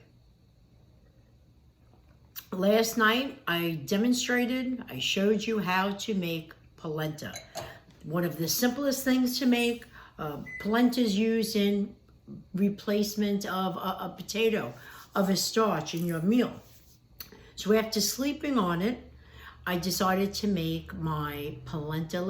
Last night I showed you how to make polenta. One of the simplest things to make. Polenta is used in replacement of a potato, of a starch in your meal. So after sleeping on it, I decided to make my polenta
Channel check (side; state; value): both; identical; correlation 1.00